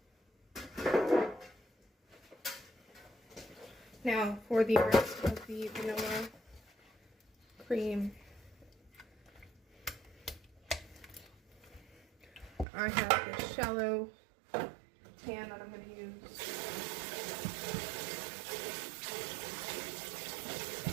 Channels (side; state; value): left; drops out; at 12.7 s